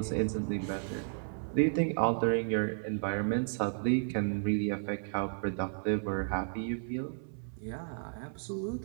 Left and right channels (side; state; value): left; silent; 56 dB below the other